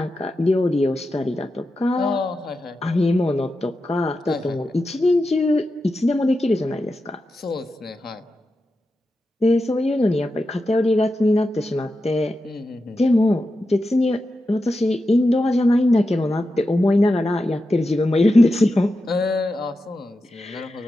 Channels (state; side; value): normal; both; correlation 0.90